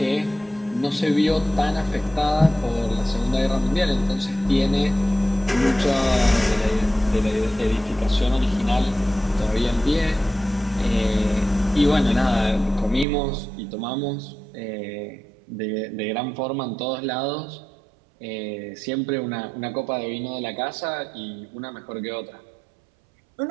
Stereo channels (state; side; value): drops out; left; at 13.1 s